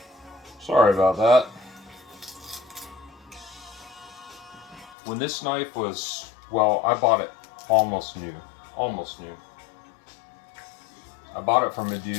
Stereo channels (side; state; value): right; drops out; at 5.0 s